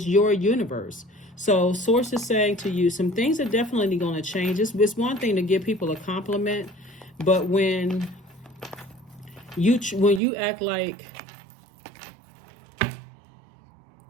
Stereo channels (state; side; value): drops out; left; at 10.2 s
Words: your universe. So source is saying to you, some things are definitely going to change. It's one thing to give people a compliment, but when you act like